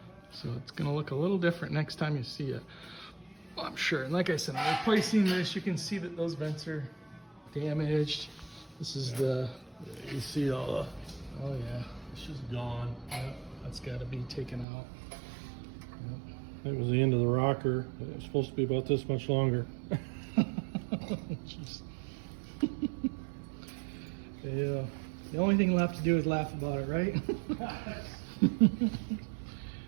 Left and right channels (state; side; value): drops out; left; at 14.7 s